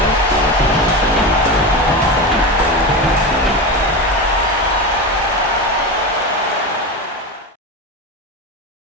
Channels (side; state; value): both; normal; correlation 0.21